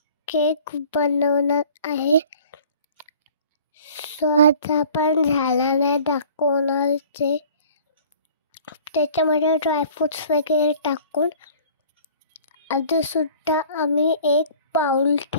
cake बनवणार आहे. सो आज आपण झाडाने दाखवणार ते. त्याच्यामध्ये ड्रायफ्रुट्स वगैरे टाकून आधीसुद्धा आम्ही एक बाउल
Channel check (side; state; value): both; inverted; correlation -0.49